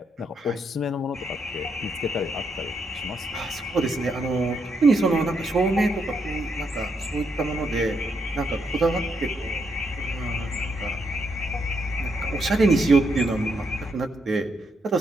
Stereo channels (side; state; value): both; normal; correlation 0.78